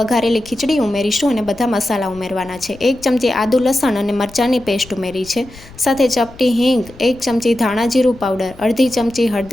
વઘારેલી ખીચડી ઉમેરીશું અને બધા મસાલા ઉમેરવાના છે। 1 ચમચી આદુ લસણ અને મરચાંની પેસ્ટ ઉમેરી છે, સાથે ચપટી હિંગ, 1 ચમચી ધાણા જીરું પાવડર, અડધી ચમચી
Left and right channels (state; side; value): noise; left; rumble, 21 dB below the sound